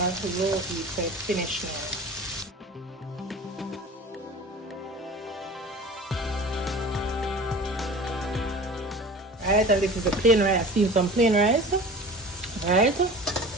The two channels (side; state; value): both; normal; correlation 0.39